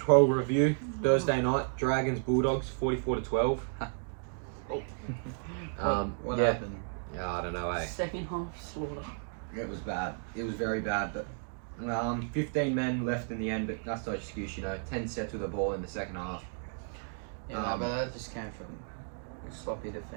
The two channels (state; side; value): silent; left; 56 dB below the other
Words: review. Thursday night, Dragons Bulldogs 44-12. What happened? Yeah, I don't know, Second half slaughter. It was bad. It was very bad, but 15 men left in the end, but that's no excuse, 10 sets with the ball in the second half. Yeah, but that just came from sloppy